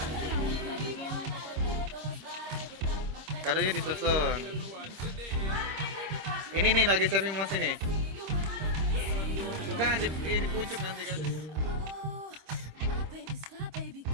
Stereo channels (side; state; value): left; late; 26 ms